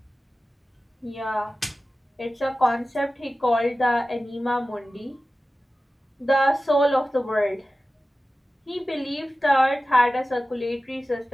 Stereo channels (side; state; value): both; normal; correlation 0.95